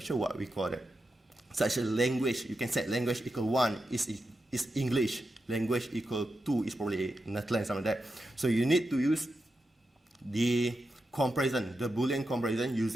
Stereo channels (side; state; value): both; normal; correlation 0.88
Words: sure what we call it, such a language. You can set language equal 1 is English, language equal 2 is probably Netherlands, something like that. So you need to use the comparison, the Boolean comparison,